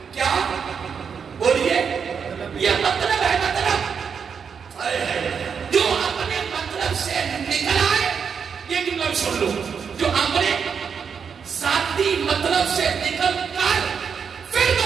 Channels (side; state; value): left; quieter; 6.5 dB